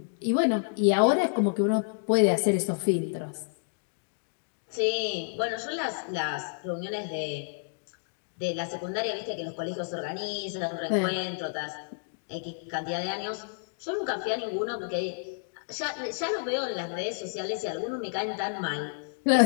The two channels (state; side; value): silent; right; digital silence